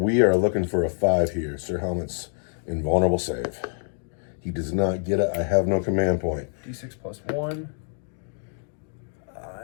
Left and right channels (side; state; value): right; silent; 57 dB below the other